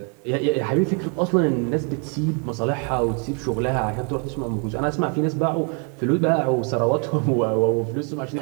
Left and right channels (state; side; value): quieter; left; 38.8 dB